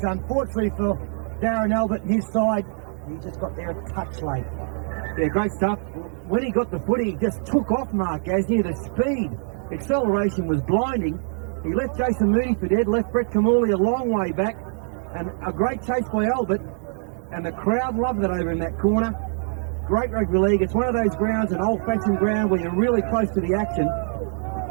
Unfortunately for Darren Albert and his side, he just got there a touch late. Yeah, great stuff. When he got the footy, he just took off Mark Gasnier. The speed, acceleration was blinding. He left Jason Mooney for dead, left Brett Kamali a long way back, and a great chase by Albert, and the crowd loved it over in that corner. Great rugby league. It's one of those grounds, an old-fashioned ground where you're really close to the action,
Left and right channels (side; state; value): left; silent; digital silence